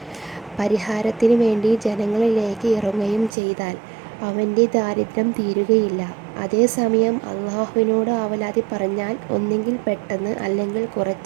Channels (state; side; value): drops out; left; at 3.3 s